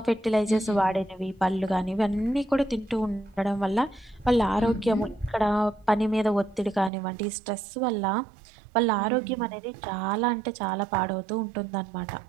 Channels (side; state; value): left; drops out; at 6.9 s